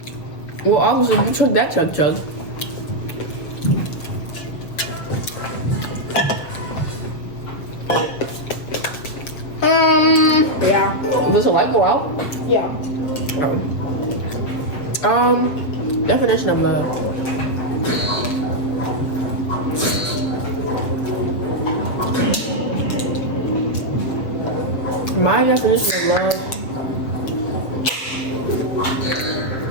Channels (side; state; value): right; late; 7.0 ms